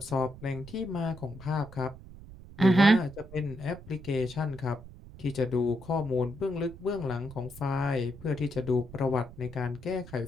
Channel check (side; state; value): right; noise; rumble, 17 dB below the sound